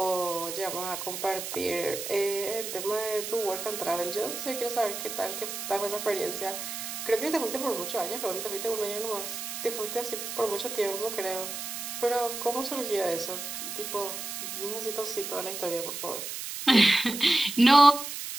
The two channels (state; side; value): noise; right; hiss, 6 dB below the sound